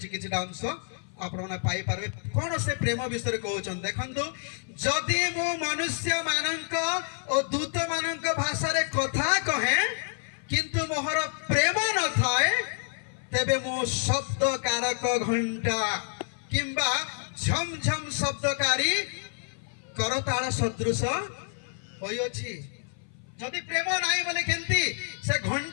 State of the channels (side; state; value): right; silent; 56 dB below the other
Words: किछटा अंश आपने पाई पारे कौन से प्रेम विषय कहते देखु जदि मु मनुष्य मानक और दूत मानक भाषा रे कथा कहे किंतु मोहर प्रेम न थाए तेबे मो शब्द कारक घंटा किंबा झम झम शब्दकारी करताल सदृश होइछि जदि प्रेम नाही बोले केंती से